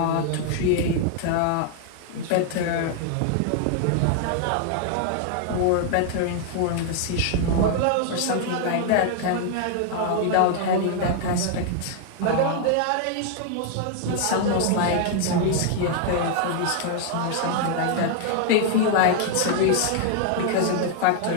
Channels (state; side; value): different; both; correlation 0.00